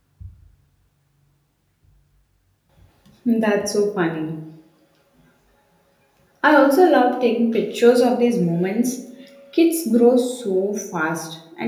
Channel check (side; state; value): both; identical; correlation 1.00